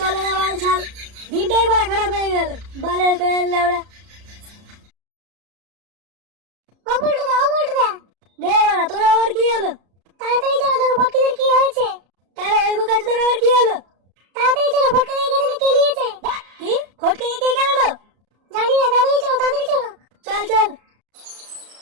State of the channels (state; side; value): late; left; 33 ms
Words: না বাল ছাল। দিনটাই বাড়া খারাপ হয়ে গেল, বালের ফ্যান লেওড়া। ও বলটুদা দে বাড়া, তোর আবার কি হলো? তাড়াতাড়ি চলো, দেখো ফটকিদের কি হয়েছে। তারা ওই বোকাচোদার আবার কি হলো? তাড়াতাড়ি চলো, ফটকে এখানে কেলিয়েছে। কি ফটকে কে গেল? জানি না, তাড়াতাড়ি চলো, তাড়াতাড়ি চলো। চল চল।